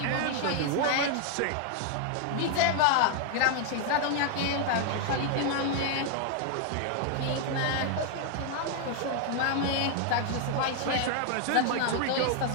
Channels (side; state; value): both; different; correlation 0.00